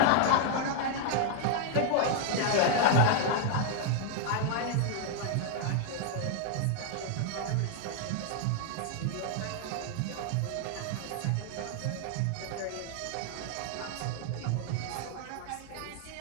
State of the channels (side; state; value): both; different; correlation 0.00